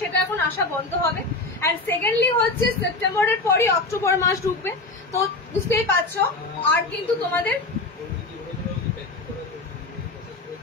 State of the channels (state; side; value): quieter; right; 3.2 dB